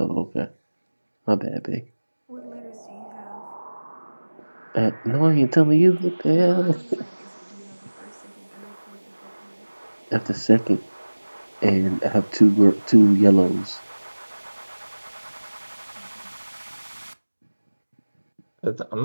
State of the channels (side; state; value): both; inverted; correlation -1.00